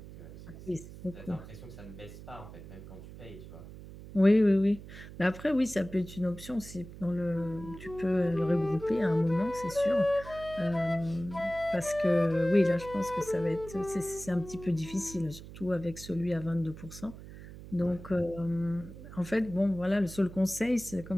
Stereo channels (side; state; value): right; noise; hum, 15 dB below the sound